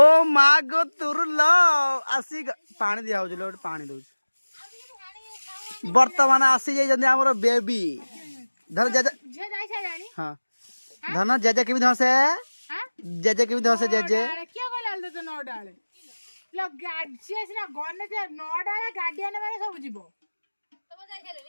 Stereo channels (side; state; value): both; inverted; correlation -1.00